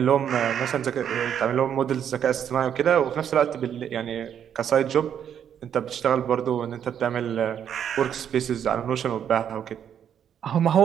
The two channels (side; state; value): left; quieter; 8.9 dB